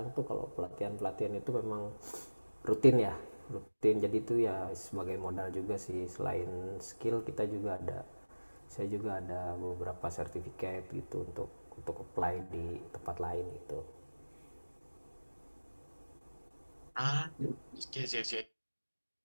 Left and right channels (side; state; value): both; inverted; correlation -1.00